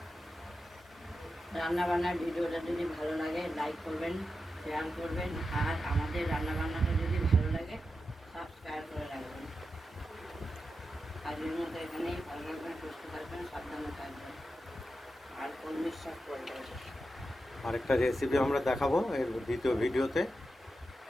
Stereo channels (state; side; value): normal; both; correlation 0.90